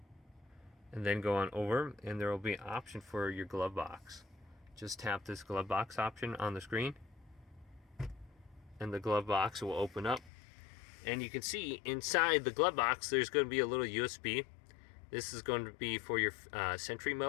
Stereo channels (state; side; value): drops out; right; at 10.3 s